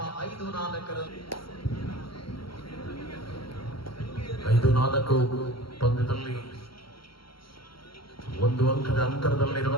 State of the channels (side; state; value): right; late; 0.74 ms